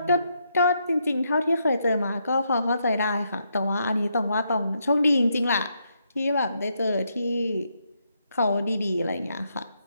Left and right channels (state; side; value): inverted; both; correlation -0.78